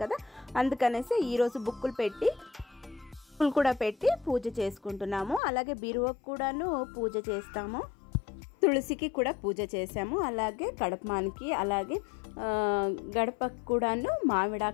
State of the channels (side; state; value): right; drops out; at 5.4 s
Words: కదా, అందుకనేసి ఈరోజు బుక్కులు పెట్టి బుక్కులు కూడా పెట్టి పూజ చేసుకుంటున్నాము. అలాగే బీరువాకు కూడాను పూజ చేస్తాము, తులసికి కూడా పూజ చేసాము, అలాగే కడపమానికి అలాగే గడపకు కూడాను